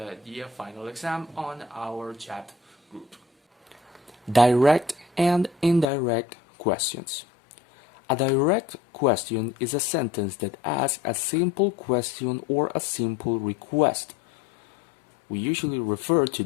the final exam on our chat group. Direct and indirect questions. A direct question is a sentence that asks a simple question or a simple request. We usually refer to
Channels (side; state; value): right; drops out; at 5.9 s